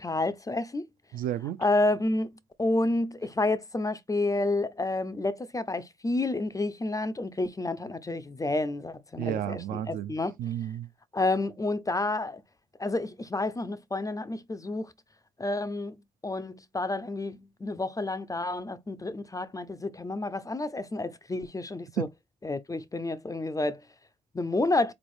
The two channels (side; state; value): both; normal; correlation 0.74